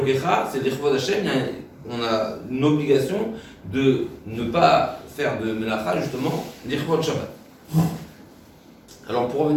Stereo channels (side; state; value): both; identical; correlation 1.00